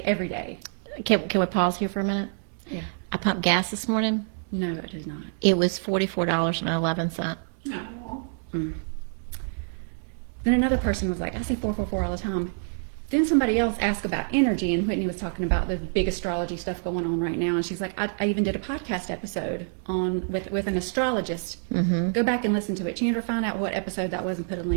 every day. Can we pause here for a minute? Yeah. I pumped gas this morning. No, it is not. It was $44.11. No. Then another person was like, I say 444 all the time. Then somebody else asked about energy, and Whitney was talking about the big astrology stuff going on right now, and she's like, I even did a podcast episode with an astrologist. Go back and listen to it. Chandra, find out what episode that was and put a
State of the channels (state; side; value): silent; left; digital silence